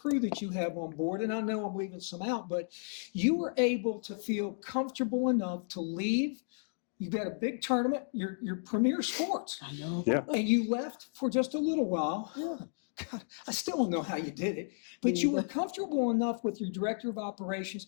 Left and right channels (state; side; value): silent; right; digital silence